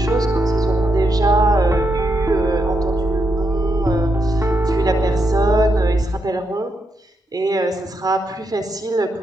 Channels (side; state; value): both; normal; correlation 0.81